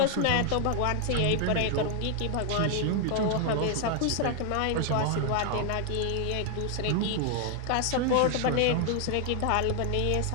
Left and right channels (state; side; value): different; both; correlation 0.00